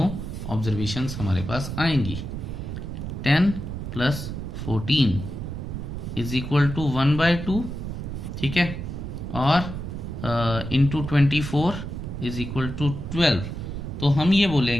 ऑब्जर्वेशंस हमारे पास आएंगी। 10 प्लस 14 इज इक्वल टू 1/2। ठीक है, और इंटू 24 इज इक्वल टू 12। तो हम ये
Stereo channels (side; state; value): right; noise; rumble, 6 dB below the sound